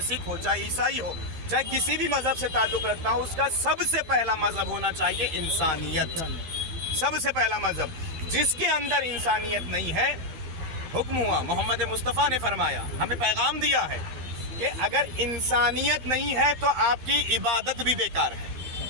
सिख हो, चाहे ईसाई हो, चाहे किसी भी मज़हब से ताल्लुक़ रखता हो, उसका सबसे पहला मज़हब होना चाहिए इंसानियत। सबसे पहला मज़हब, जिसके अंदर इंसानियत नहीं है, हुक्म हुआ, मोहम्मद मुस्तफ़ा ने फरमाया, हमें पैगाम दिया है कि अगर इंसानियत नहीं है तो आपकी इबादत भी बेकार है,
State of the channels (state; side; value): late; left; 12 ms